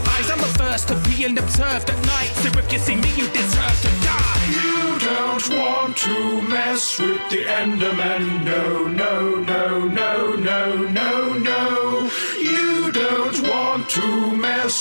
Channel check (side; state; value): both; inverted; correlation -1.00